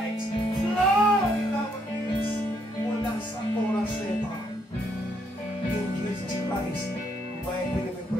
flow in our midst, mula sa oras na ito. In Jesus Christ, mighty name we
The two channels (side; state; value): both; normal; correlation 0.72